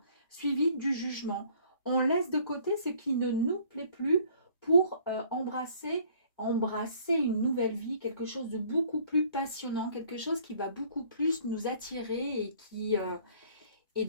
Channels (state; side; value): inverted; both; correlation -0.57